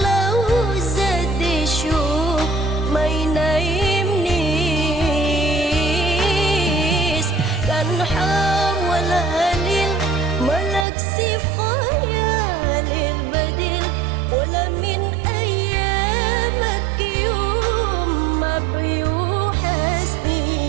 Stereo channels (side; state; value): left; drops out; at 10.9 s